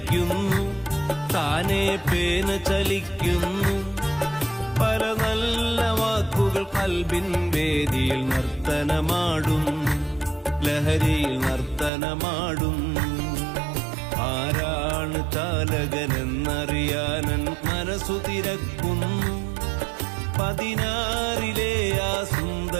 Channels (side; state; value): left; drops out; at 11.9 s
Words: താനേ പേന ചലിക്കുന്നു. പല നല്ല വാക്കുകൾ കൽബിൻ വേദിയിൽ നർത്തനമാടുന്നു, ലഹരിയിൽ നർത്തനമാടുന്നു. ആരാണ് ചാലകനെന്നറിയാനൻ മനസ്സു തിരക്കുന്നു. 16 ആ